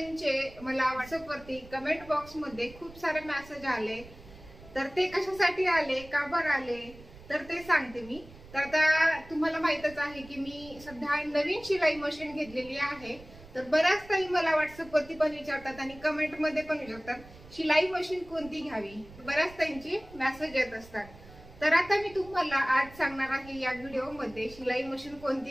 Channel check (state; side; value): noise; right; rumble, 19 dB below the sound